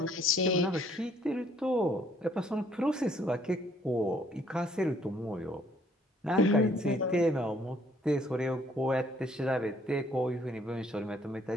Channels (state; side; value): normal; both; correlation 0.63